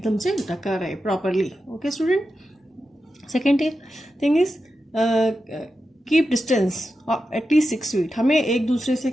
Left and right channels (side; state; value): both; normal; correlation 0.90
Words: से ढका रहे properly. Okay student. Second thing is keep distance at least 6 feet. हमें एक दूसरे से